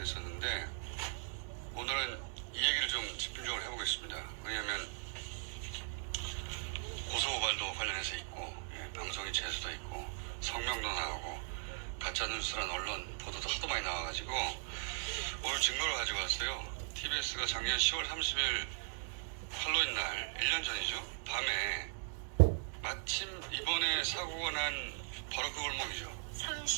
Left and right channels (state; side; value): silent; left; 52 dB below the other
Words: 오늘은 이 얘기를 좀 집중적으로 해보겠습니다. 왜냐하면 고소고발도 관련해서 있고 방송이 재수도 있고 성명도 나오고 가짜뉴스란 언론 보도도 하도 많이 나와가지고 오늘 증거를 가지고 왔어요. TBS가 작년 10월 30일 할로윈 날 1년 전이죠. 밤에 마침 이번에 사고가 난 바로 그 골목이죠.